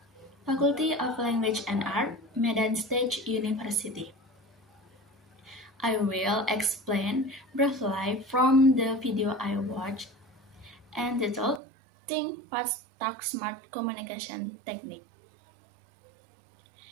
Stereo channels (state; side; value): drops out; left; at 11.6 s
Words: Faculty of Language and Art, Medan State University. I will explain briefly from the video I watched entitled Think Fast, Talk Smart Communication Technique.